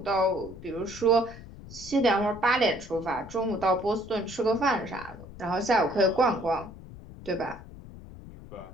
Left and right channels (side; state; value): left; noise; rumble, 16 dB below the sound